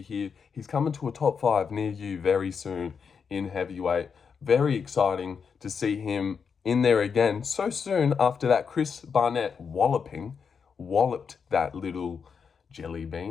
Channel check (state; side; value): quieter; right; 6.2 dB